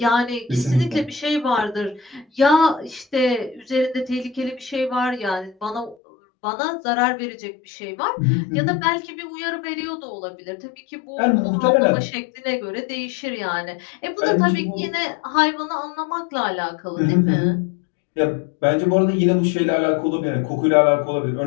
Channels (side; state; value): right; drops out; at 6.0 s